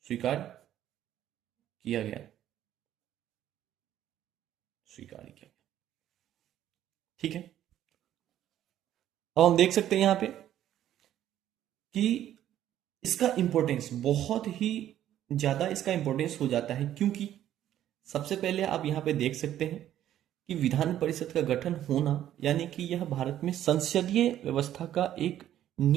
गया। ठीक है, अब हम देख सकते हैं यहां पे कि इसका इंपॉर्टेंस बहुत ही ज्यादा इसका इंपॉर्टेंस हो जाता है, क्योंकि सबसे पहले आप यहां पे देख सकते हैं कि विधान परिषद का गठन होना, यानी कि यह भारत में संसदीय व्यवस्था का एक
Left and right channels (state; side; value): quieter; left; 11.8 dB